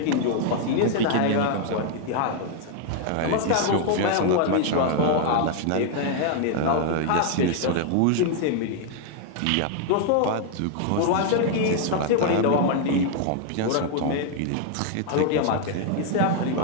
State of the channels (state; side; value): different; both; correlation 0.00